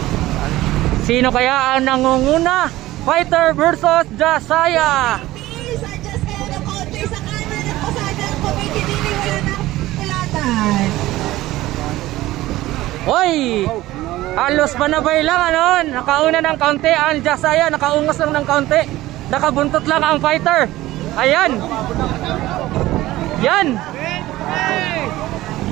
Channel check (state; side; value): quieter; left; 16.7 dB